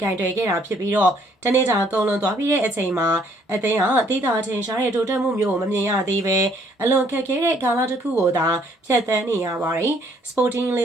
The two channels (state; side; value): normal; both; correlation 0.65